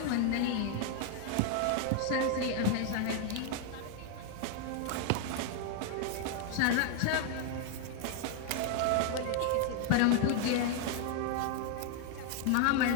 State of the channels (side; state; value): both; different; correlation 0.00